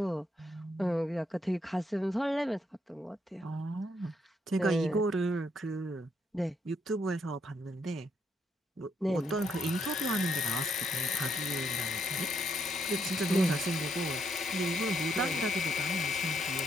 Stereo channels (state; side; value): normal; both; correlation 0.75